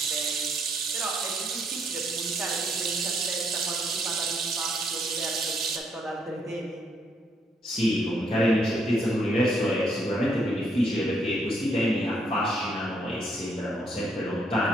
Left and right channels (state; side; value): normal; both; correlation 0.72